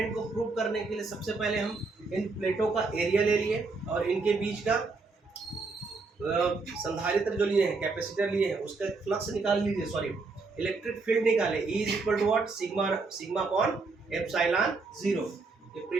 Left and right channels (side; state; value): left; quieter; 4.0 dB